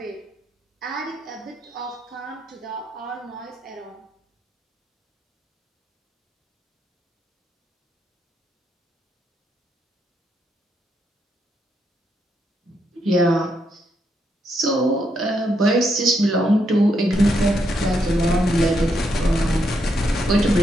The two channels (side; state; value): both; normal; correlation 0.78